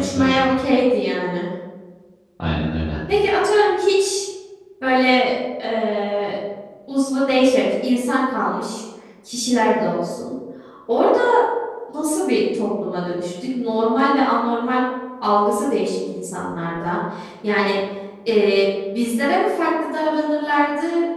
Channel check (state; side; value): identical; both; correlation 1.00